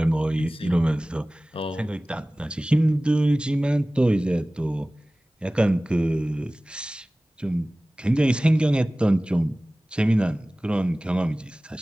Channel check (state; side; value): normal; both; correlation 0.98